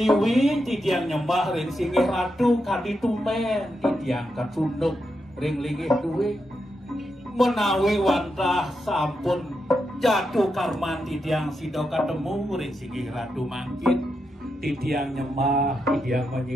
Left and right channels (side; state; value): both; normal; correlation 0.85